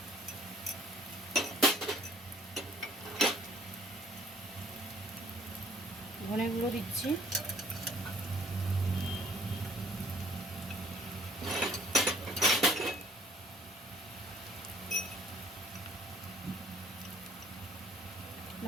ধনে গুঁড়ো দিচ্ছি,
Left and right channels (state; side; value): normal; both; correlation 0.57